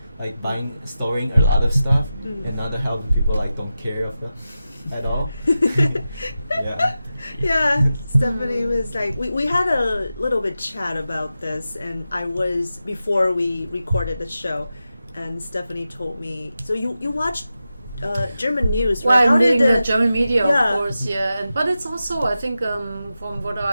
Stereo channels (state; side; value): inverted; both; correlation -0.92